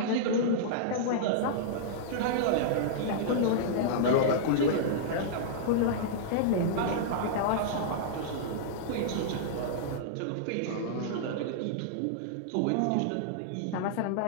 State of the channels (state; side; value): different; both; correlation -0.02